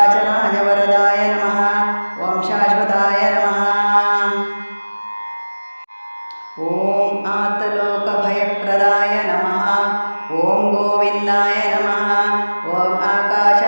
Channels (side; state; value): both; inverted; correlation -1.00